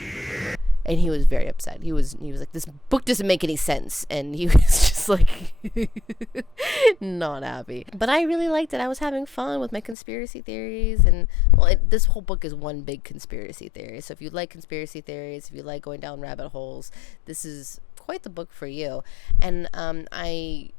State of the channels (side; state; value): right; drops out; at 10.0 s